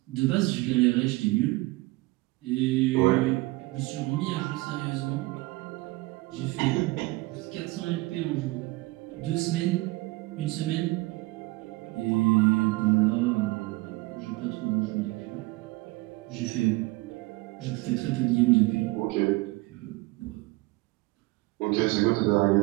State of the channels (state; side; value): quieter; left; 22.0 dB